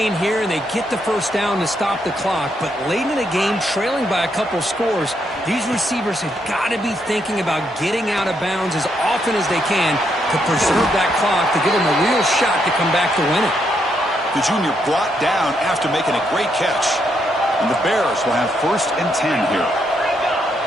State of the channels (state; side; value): normal; both; correlation 0.77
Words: here, and they get the first down to stop the clock. But late in the game, trailing by a couple scores, these receivers have got to be thinking about getting out of bounds as often as they can to preserve that clock, to give them a real shot to come back to win it. The junior brought down after making a great catch. And the Bears will have 1st and 10 here.